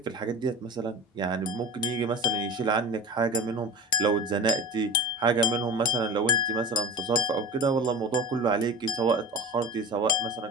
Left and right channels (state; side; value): normal; both; correlation 0.32